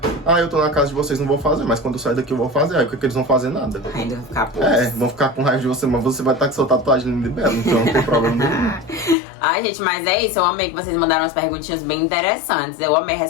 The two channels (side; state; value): right; drops out; at 9.2 s